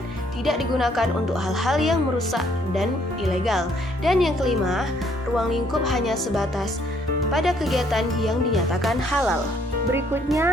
tidak digunakan untuk hal-hal yang merusak dan ilegal. Dan yang kelima, ruang lingkup hanya sebatas pada kegiatan yang dinyatakan halal.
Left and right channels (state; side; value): normal; both; correlation 0.66